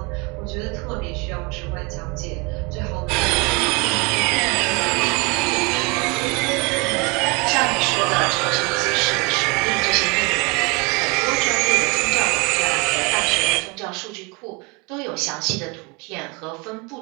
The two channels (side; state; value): left; quieter; 28.9 dB